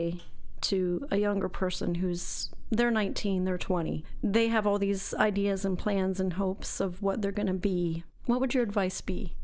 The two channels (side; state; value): both; identical; correlation 1.00